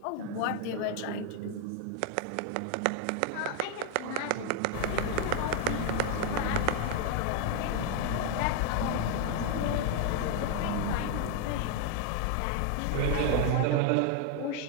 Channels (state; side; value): different; both; correlation 0.00